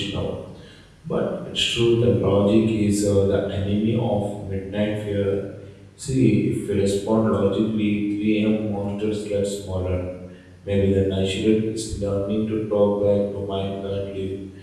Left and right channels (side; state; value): both; identical; correlation 1.00